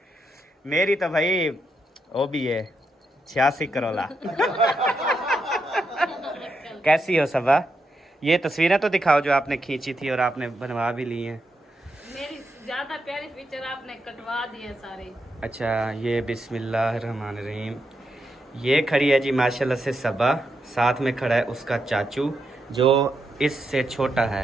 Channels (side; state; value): both; normal; correlation 0.83